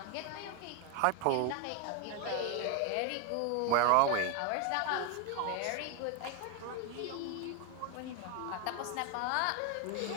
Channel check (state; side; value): different; both; correlation 0.01